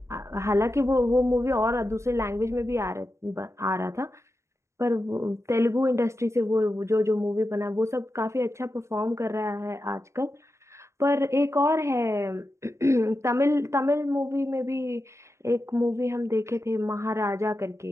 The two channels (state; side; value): late; left; 0.14 ms